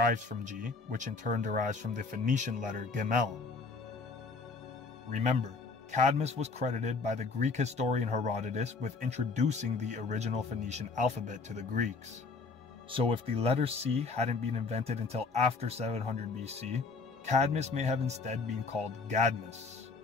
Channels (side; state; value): right; quieter; 4.2 dB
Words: from G, which in turn derives from the Phoenician letter Gemel. Remember, Cadmus was credited by the Greek historian Herodotus with introducing the original Phoenician alphabet to the Greeks. So if the letter C hadn't been invented until after 700 BC, Cadmus may have instead been called Gadmus,